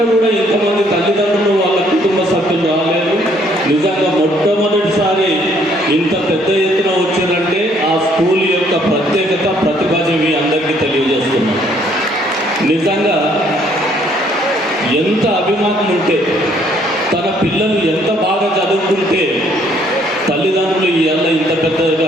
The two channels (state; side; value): normal; both; correlation 0.65